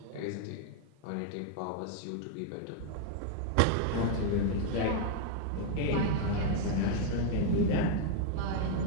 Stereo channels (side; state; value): both; different; correlation 0.00